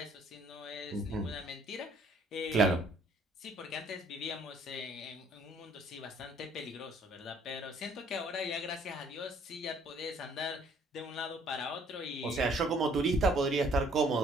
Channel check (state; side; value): normal; both; correlation 0.61